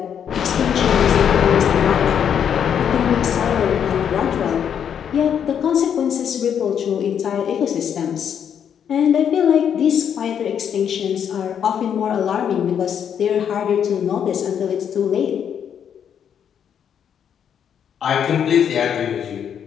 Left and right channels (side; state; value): right; quieter; 8.4 dB